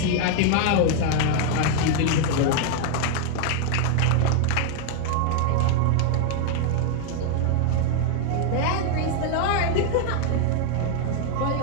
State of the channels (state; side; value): different; both; correlation 0.01